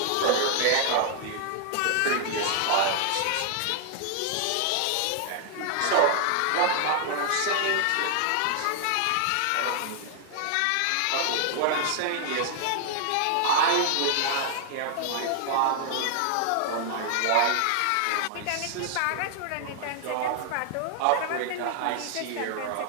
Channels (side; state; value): both; different; correlation 0.00